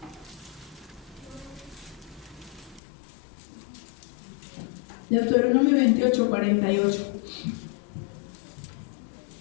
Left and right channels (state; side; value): drops out; right; at 2.8 s